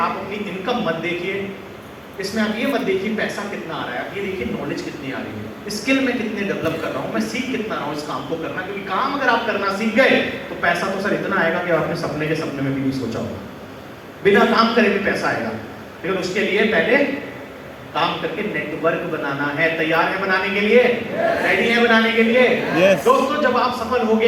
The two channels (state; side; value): identical; both; correlation 1.00